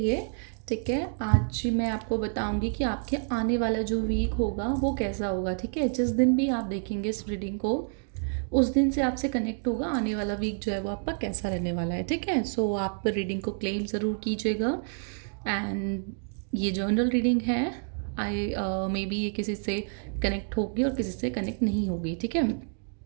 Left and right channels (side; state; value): left; silent; 59 dB below the other